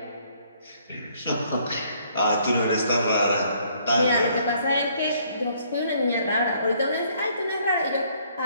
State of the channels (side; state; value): both; inverted; correlation -0.65